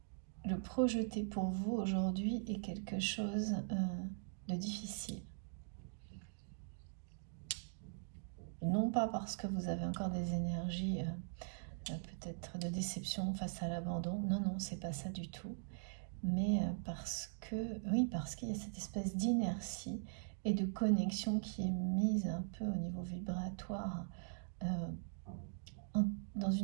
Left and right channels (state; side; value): silent; left; digital silence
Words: le projeter pour vous aujourd'hui est quelque chose de difficile. Non pas parce que vous avez encore des énergies peut-être de déception face à l'abandon, non, non, c'est pas ça du tout. Mais parce qu'il y a cette espèce d'inertie et de connexion qui est mise un peu au niveau vibratoire dans